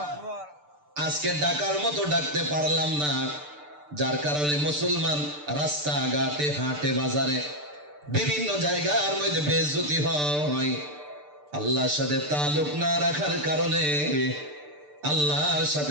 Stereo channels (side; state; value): left; late; 6.8 ms